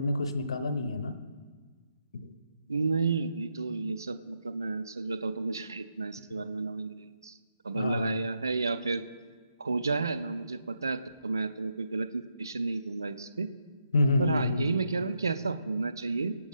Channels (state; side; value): inverted; both; correlation -0.81